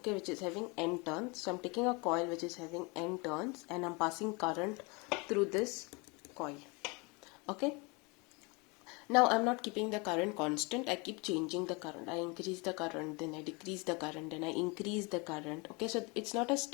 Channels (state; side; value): quieter; right; 28.7 dB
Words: which is having n turns. So I'm taking a coil which is having n turns and I'm passing current through this coil. Okay, now I'm not keeping the current constant, I keep changing the current. I increase the current, then I decrease the current, then I increase the current. Okay, so it's not a